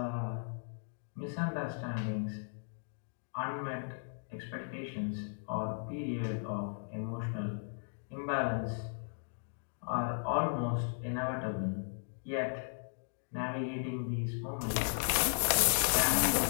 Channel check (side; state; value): right; silent; digital silence